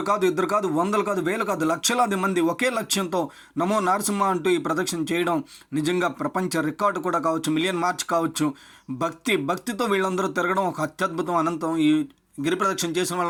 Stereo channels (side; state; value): both; identical; correlation 1.00